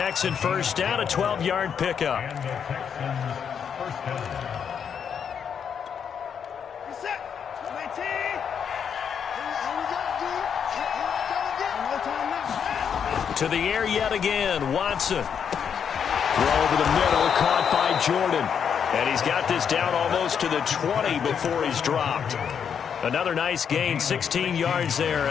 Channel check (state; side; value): quieter; right; 7.5 dB